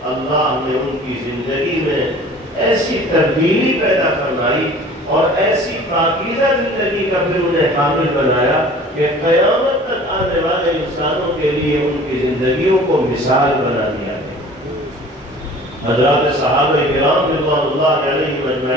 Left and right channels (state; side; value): normal; both; correlation 0.46